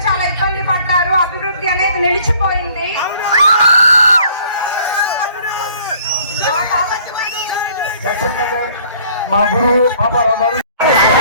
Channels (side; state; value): both; inverted; correlation -0.57